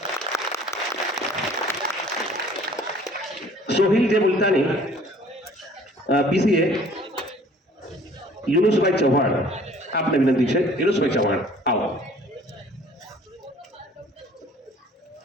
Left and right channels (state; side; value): normal; both; correlation 0.53